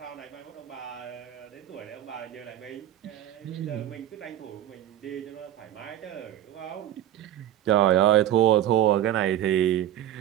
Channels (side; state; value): left; quieter; 12.0 dB